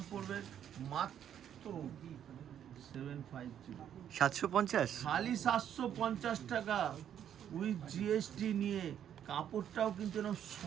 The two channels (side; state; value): left; quieter; 9.7 dB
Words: পড়বে মাত্র 750, 750। খালি 750 টাকা উইথ জিএসটি নিয়ে। কাপড়টাও কিন্তু এরকম